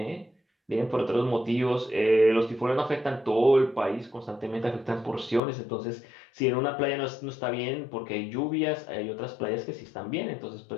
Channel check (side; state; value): right; drops out; at 5.4 s